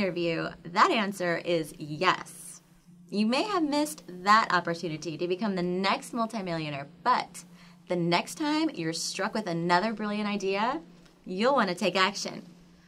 that answer is yes. You may have missed that opportunity to become the next multimillionaire, but the next time you're struck with another brilliant idea, you'll want to take action.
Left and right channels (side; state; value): both; identical; correlation 1.00